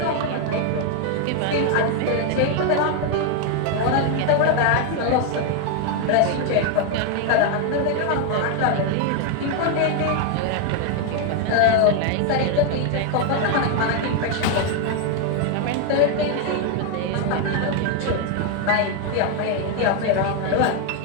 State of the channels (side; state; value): both; different; correlation 0.01